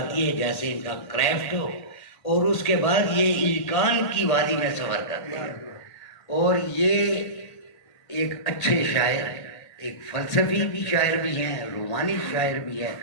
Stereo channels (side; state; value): right; late; 1.8 ms